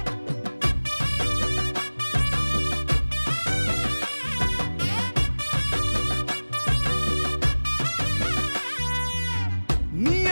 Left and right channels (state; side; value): inverted; both; correlation -1.00